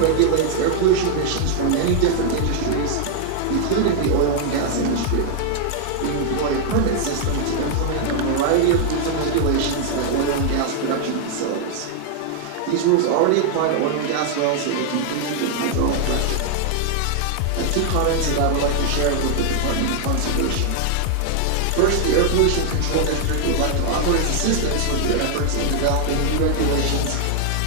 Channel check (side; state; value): both; different; correlation 0.00